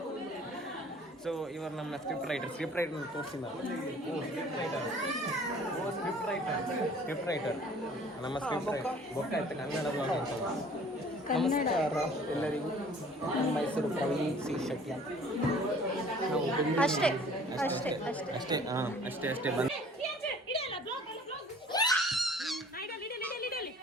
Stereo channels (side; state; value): both; normal; correlation 0.51